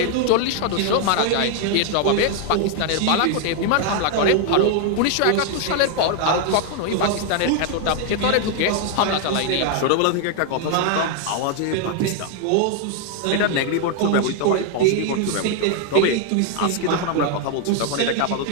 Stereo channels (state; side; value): different; both; correlation 0.00